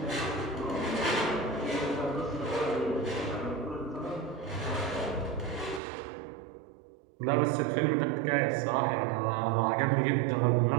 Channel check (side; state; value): left; drops out; at 5.8 s